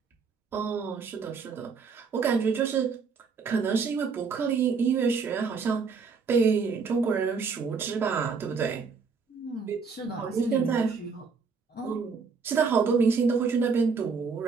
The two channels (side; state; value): left; quieter; 5.2 dB